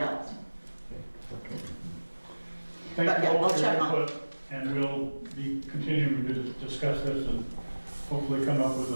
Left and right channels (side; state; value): both; inverted; correlation -1.00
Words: thank But you yeah, all I'll for your check on it. input, and we'll be continuing to discuss this and hopefully come up with